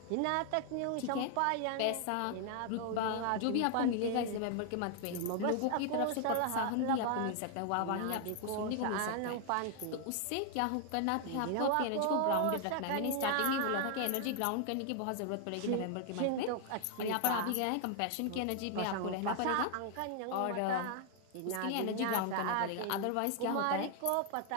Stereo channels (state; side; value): different; both; correlation 0.00